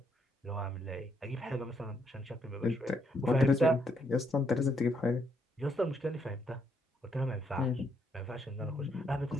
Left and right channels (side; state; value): both; normal; correlation 0.74